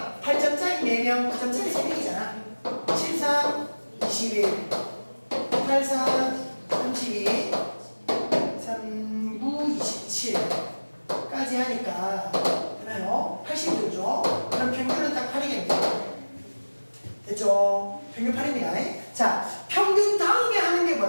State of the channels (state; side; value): inverted; both; correlation -1.00